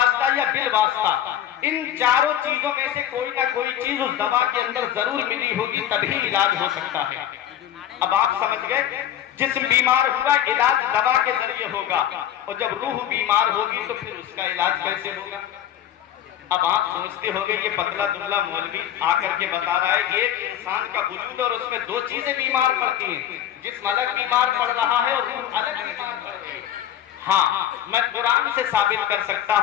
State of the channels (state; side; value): quieter; right; 11.0 dB